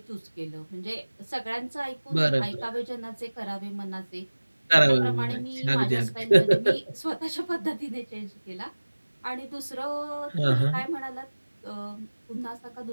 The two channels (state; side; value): inverted; both; correlation -1.00